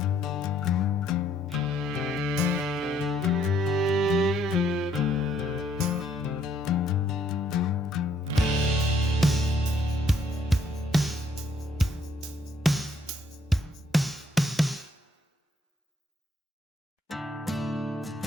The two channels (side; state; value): both; normal; correlation 0.67